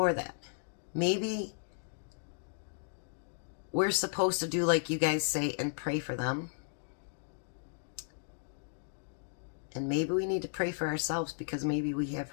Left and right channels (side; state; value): right; silent; digital silence